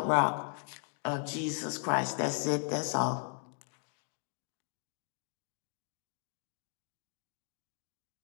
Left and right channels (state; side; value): silent; right; 53 dB below the other